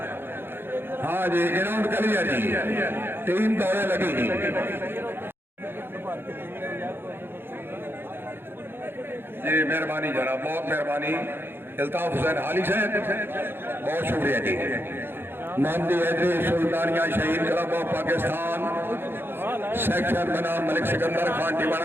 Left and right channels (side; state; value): left; late; 0.10 ms